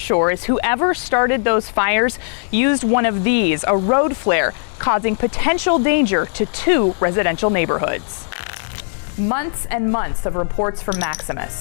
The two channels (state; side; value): silent; right; 67 dB below the other